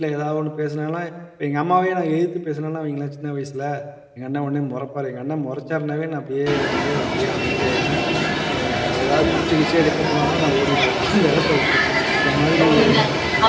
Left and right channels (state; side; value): identical; both; correlation 1.00